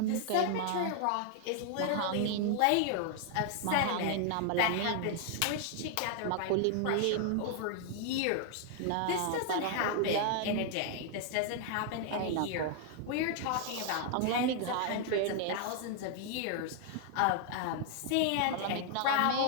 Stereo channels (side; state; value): both; different; correlation 0.00